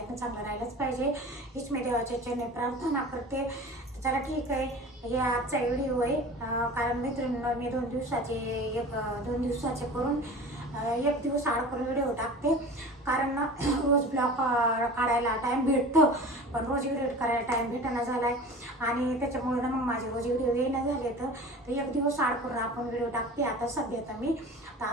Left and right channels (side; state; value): both; normal; correlation 0.38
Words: ना? चांगलं राहिलंच पाहिजे हीच मी देवाच्या चरणी प्रार्थना करते. चला ठीक आहे, हे आजचा व्हिडिओ आहे. कारण मैत्रिणींनो, मी 2 दिवसाचे करून 1 दिवस आड करून व्हिडिओ टाकते. कारण ना रोज ब्लॉग काढायला टाईम भेटतं, पण रोज व्हिडिओ करायला टाईम भेटेना झाला आहे. आणि त्याच्यामुळे ना मग माझे रोज व्हिडिओ येणं झाले तर 1 दिवस आड करून आपण व्हिडिओ टाकते. आता सध्या तर